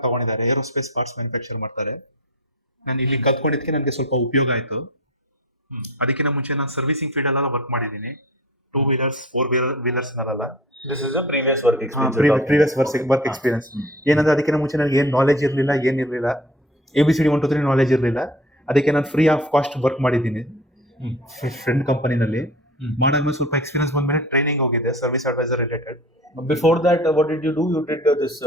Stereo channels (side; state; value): both; normal; correlation 0.40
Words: ತಗೊಂಡಿದ್ದಾರೆ. ಏರೋಸ್ಪೇಸ್ ಪಾರ್ಟ್ಸ್ ಮ್ಯಾನುಫ್ಯಾಕ್ಚರ್ ಮಾಡ್ತಾರೆ. ನಾನು ಇಲ್ಲಿ ಕಲ್ತ್ಕೊಂಡಿದ್ದಕ್ಕೆ ನನಗೆ ಸ್ವಲ್ಪ ಉಪಯೋಗ ಆಯಿತು. ಅದಕ್ಕಿಂತ ಮುಂಚೆ ನಾನು ಸರ್ವಿಸಿಂಗ್ ಫೀಲ್ಡ್ ಅಲ್ಲೆಲ್ಲ ವರ್ಕ್ ಮಾಡಿದ್ದೀನಿ. 2 ವೀಲರ್ಸ್ 4 ವೀಲರ್ಸ್ ನಲ್ಲ. This is a previous work experience. Previous work experience. ಏನಂದ್ರೆ ಅದಕ್ಕಿಂತ ಮುಂಚೆ ನನಗೆ ಏನು ನಾಲೆಜ್ ಇರಲಿಲ್ಲ, ಏನಿರಲಿಲ್ಲ. ABCD 1 2 3 ನಾಲೆಜ್ ಇರಲಿಲ್ಲ. ಅದಕ್ಕೆ ನಾನು ಫ್ರೀ ಆಫ್ ಕಾಸ್ಟ್ ವರ್ಕ್ ಮಾಡಿದ್ದೀನಿ ಫ್ರೆಂಡ್ ಕಂಪನಿನಲ್ಲಿ. ಮಾಡಾದ್ಮೇಲೆ ಸ್ವಲ್ಪ ಎಕ್ಸ್ಪೀರಿಯನ್ಸ್ ಬಂದ್ಮೇಲೆ ಟ್ರೈನಿಂಗ್ ಹೋಗಿದೆ service advisor related. Before that, what did you do? You did this